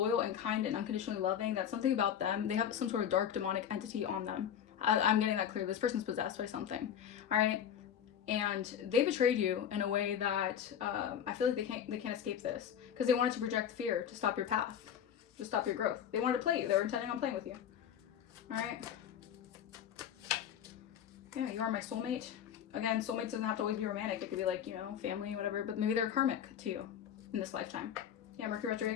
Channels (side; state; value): right; quieter; 9.1 dB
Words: and kind and unconditionally loving that something about them, they have some sort of dark demonic entity on them. I'm getting that clear. This person's possessed by something. All right. And they betrayed you in a way that I feel like they can't escape this because they wanted to project fear to stop your path, to stop your growth. They wanted to play you. They were intending on playing with you. All right. Yeah, you are my soulmate. Again, soulmates doesn't have to always be romantic. It could be like, family, whatever. But maybe they're karmic to you in this lifetime. Yeah, Mercury